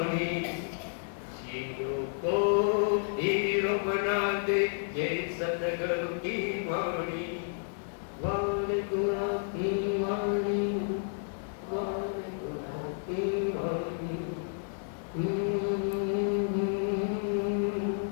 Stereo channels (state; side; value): silent; right; digital silence